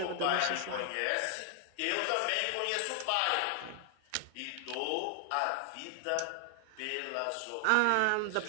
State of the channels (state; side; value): different; both; correlation 0.00